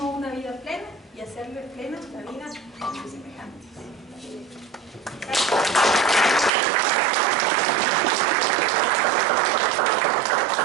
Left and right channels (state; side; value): drops out; left; at 6.5 s